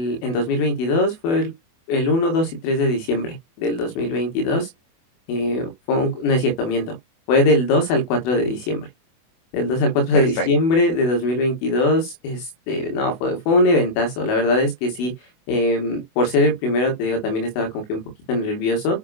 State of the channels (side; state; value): right; late; 24 ms